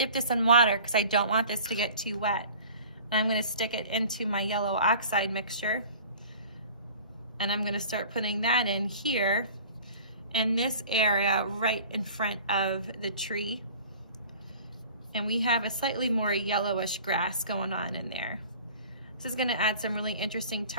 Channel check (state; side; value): inverted; both; correlation -0.44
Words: this in water because I don't want this to get too wet. I'm going to stick it into my yellow oxide mixture. And I'm gonna start putting that in here, in this area right in front of the tree. And we have a slightly more yellowish grass going on in there. This is gonna add some really interesting